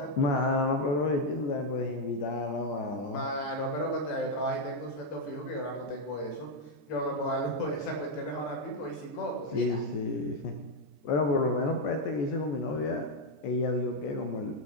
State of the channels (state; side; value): late; right; 14 ms